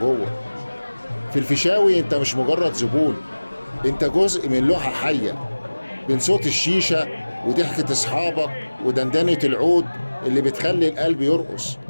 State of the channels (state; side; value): inverted; both; correlation -1.00